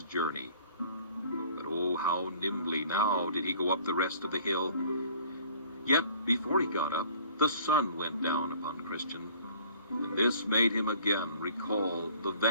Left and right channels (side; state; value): both; inverted; correlation -0.52